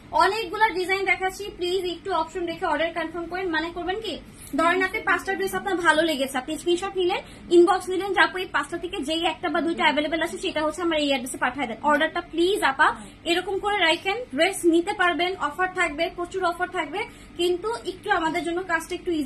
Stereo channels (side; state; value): both; identical; correlation 1.00